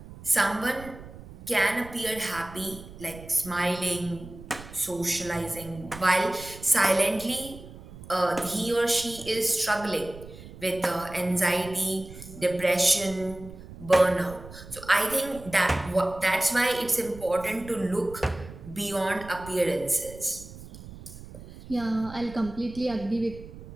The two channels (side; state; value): right; noise; rumble, 16 dB below the sound